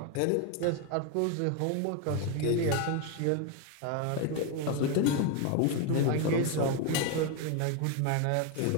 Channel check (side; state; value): both; different; correlation 0.02